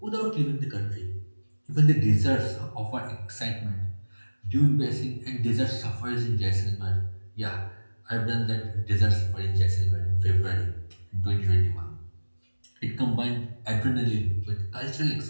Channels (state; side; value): inverted; both; correlation -1.00